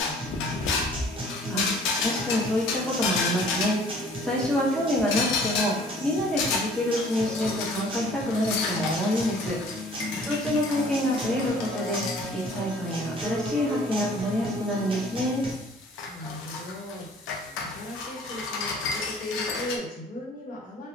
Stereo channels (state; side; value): normal; both; correlation 0.53